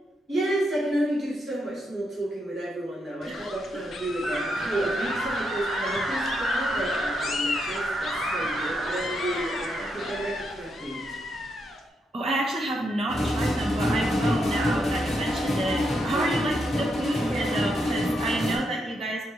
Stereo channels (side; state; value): both; normal; correlation 0.81